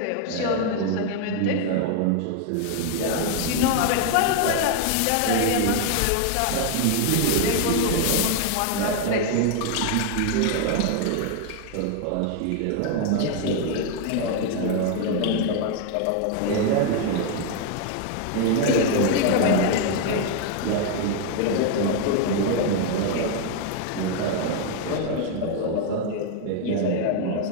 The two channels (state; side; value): different; both; correlation 0.00